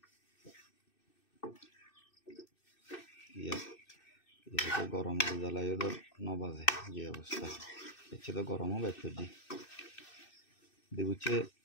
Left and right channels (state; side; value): late; right; 2.6 ms